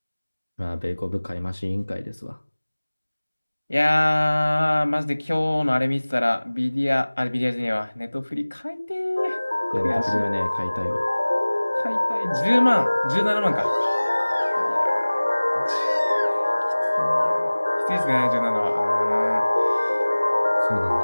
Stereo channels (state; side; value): inverted; both; correlation -1.00